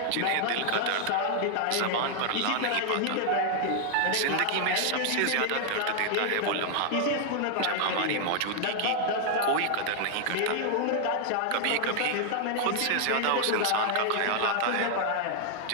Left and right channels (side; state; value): both; different; correlation 0.00